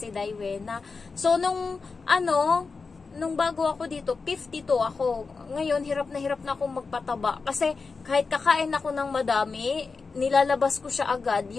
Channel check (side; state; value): right; quieter; 4.5 dB